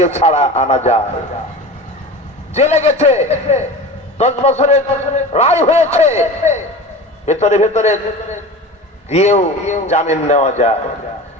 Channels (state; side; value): normal; both; correlation 0.33